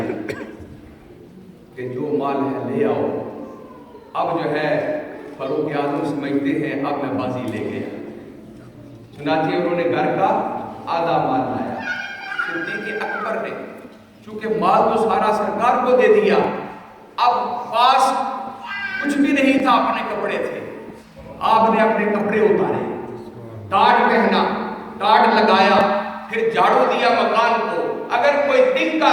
کہ جو مال ہے لے آؤ. اب جو ہے فاروق اعظم سمجھتے ہیں اب میں بازی لے گیا. چنانچہ انہوں نے گھر کا آدھا مال لایا. صدیق اکبر نے چونکہ مال تو سارا سرکار کو دے دیا، اب پاس کچھ بھی نہیں تھا، اپنے کپڑے تھے. آپ نے اپنے کپڑے اتارے، ٹاٹ پہنا، ٹاٹ لگایا، پھر جھاڑو دیا مکان کو. اگر کوئی دن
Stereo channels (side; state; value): both; identical; correlation 1.00